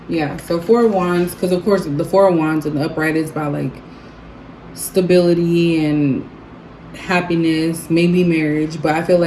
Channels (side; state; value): both; identical; correlation 1.00